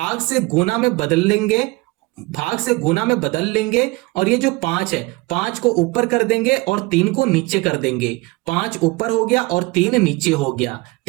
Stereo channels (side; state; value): left; quieter; 23.1 dB